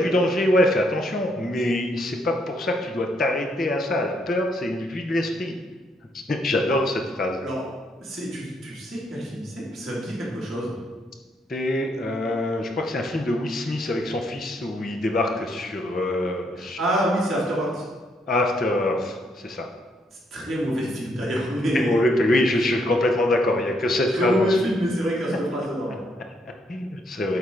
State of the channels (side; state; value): both; normal; correlation 0.73